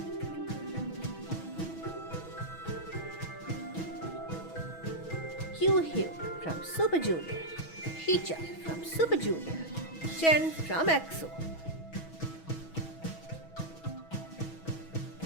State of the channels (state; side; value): late; right; 6.2 ms